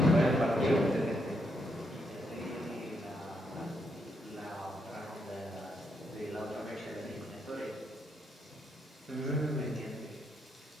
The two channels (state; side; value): normal; both; correlation 0.78